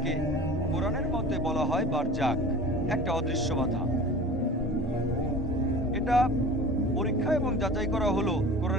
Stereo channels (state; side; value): normal; both; correlation 0.39